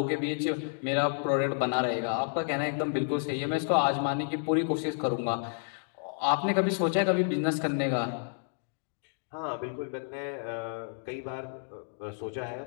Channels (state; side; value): silent; right; digital silence